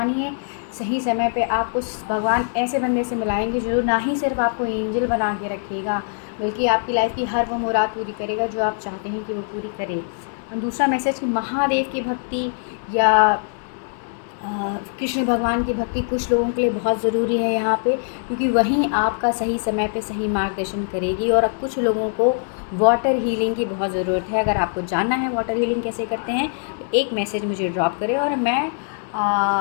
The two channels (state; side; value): silent; right; digital silence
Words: सही समय पे आपको भगवान ऐसे बंदे से मिलाएंगे जो ना ही सिर्फ आपको एंजल बना के रखेगा, बल्कि आपकी लाइफ की हर वो मुराद पूरी करेगा जो आप चाहते हैं कि वो पूरी करे। और दूसरा मैसेज कि महादेव की भक्ति या कृष्ण भगवान की भक्ति कुछ लोगों के लिए बहुत ज़रूरी है यहाँ पे, क्योंकि वहीं आपका सही समय पे सही मार्गदर्शन करेगी। और अब कुछ लोगों को वाटर हीलिंग की बहुत ज़रूरत है। अगर आपको जानना है वाटर हीलिंग कैसे करते हैं तो एक मैसेज मुझे ड्रॉप करें और मैं